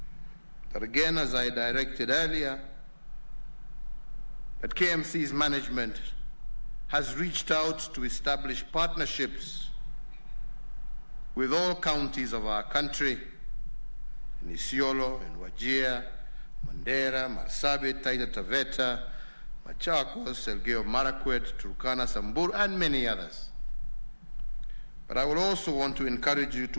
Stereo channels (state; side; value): inverted; both; correlation -1.00